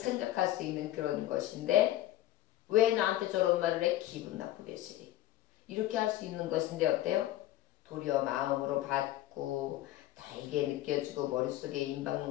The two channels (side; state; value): right; quieter; 14.5 dB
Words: 수 있는 그런 것인데 왜 나한테 저런 말을 해? 기분 나쁘게 쓰리. 이렇게 할 수 있는 것인데 어때요? 도리어 마음으로 받고 달게 느껴지고 머릿속에